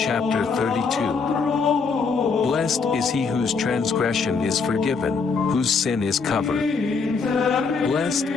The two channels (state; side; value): quieter; right; 5.0 dB